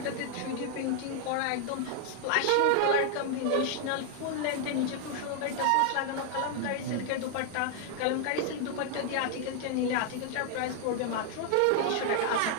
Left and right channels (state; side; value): different; both; correlation 0.00